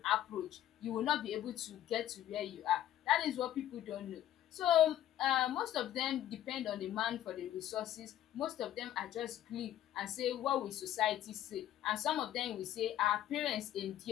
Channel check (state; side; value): quieter; right; 12.0 dB